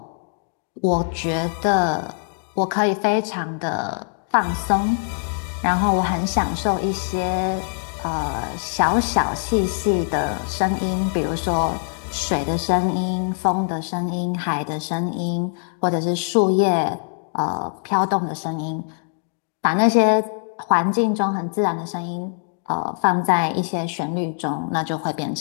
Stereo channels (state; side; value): silent; right; digital silence